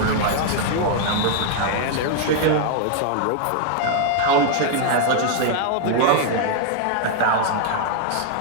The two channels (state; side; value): different; both; correlation 0.00